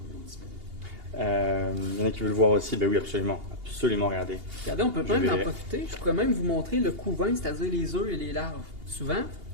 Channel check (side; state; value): left; late; 2.8 ms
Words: disparu. Il y en a qui veulent voir aussi, ben oui, absolument, regardez. Regardez, on peut même en profiter. Je pourrais même vous montrer le couvain, c'est-à-dire les œufs et les larves. Souvent,